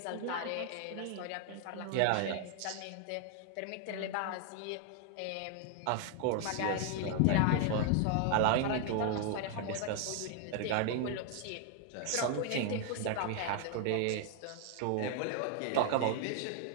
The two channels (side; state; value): both; different; correlation 0.00